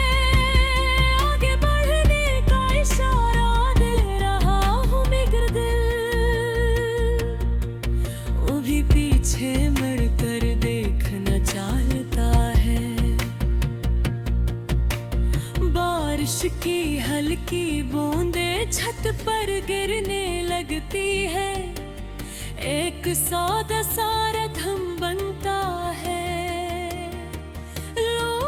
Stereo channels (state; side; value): identical; both; correlation 1.00